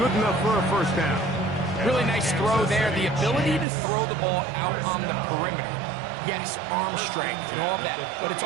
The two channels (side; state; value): left; drops out; at 3.7 s